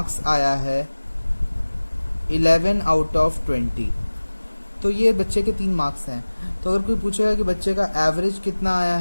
आया है 11 आउट ऑफ 20। तो ये बच्चे के 3 मार्क्स हैं। तो अगर कोई पूछेगा कि बच्चे का एवरेज कितना आया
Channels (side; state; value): both; inverted; correlation -1.00